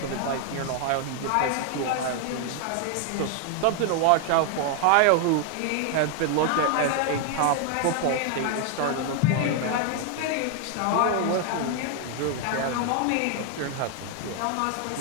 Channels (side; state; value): both; different; correlation 0.01